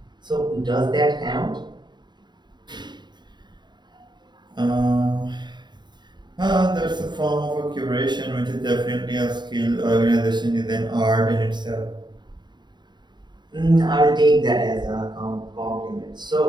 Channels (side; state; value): left; late; 0.21 ms